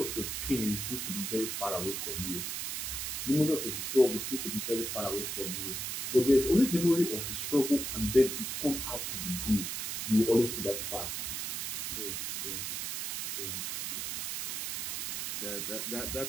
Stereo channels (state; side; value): noise; right; hiss, 3 dB below the sound